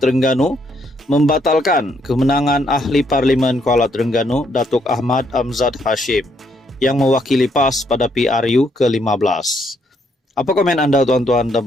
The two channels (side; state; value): both; normal; correlation 0.72